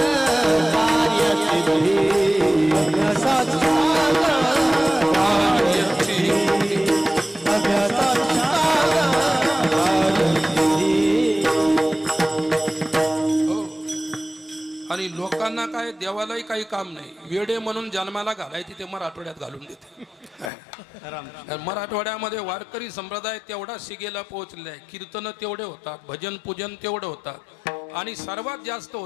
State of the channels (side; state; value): right; drops out; at 20.5 s